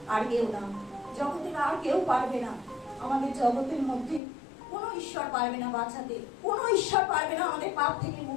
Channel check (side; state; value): right; drops out; at 4.2 s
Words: আর কেউ না। জগতের আর কেউ পারবে না। আমাদের জগতের মধ্যে কোনো ঈশ্বর পারবে না বাঁচাতে, কোনো ঈশ্বর পারবে না আমাদের পাপ থেকে